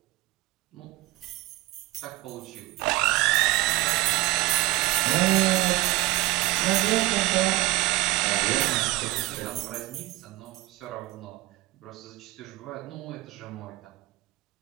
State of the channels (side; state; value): left; quieter; 19.6 dB